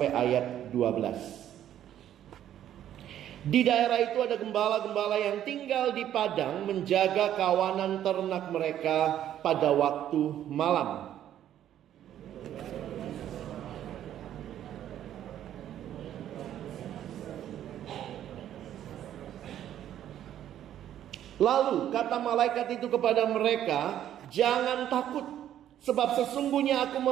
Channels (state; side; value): quieter; left; 11.2 dB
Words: ayat 12. Di daerah itu ada gembala-gembala yang tinggal di padang menjaga kawanan ternak mereka pada waktu malam. Lalu kata malaikat itu kepada mereka, "Jangan takut, sebab sesungguhnya aku